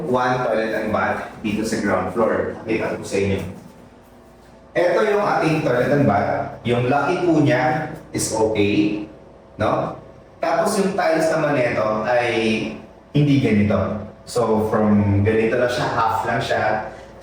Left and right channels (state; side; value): identical; both; correlation 1.00